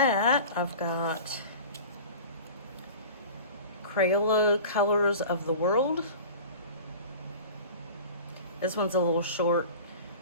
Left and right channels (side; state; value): both; inverted; correlation -0.37